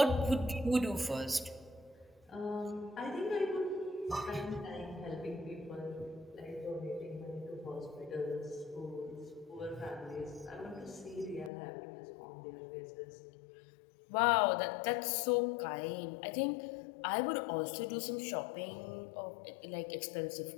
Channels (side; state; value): right; drops out; at 11.5 s